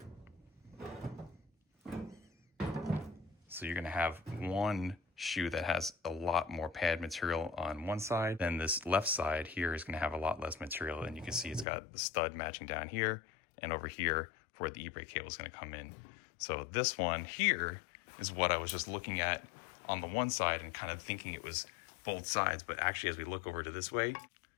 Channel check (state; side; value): drops out; right; at 11.7 s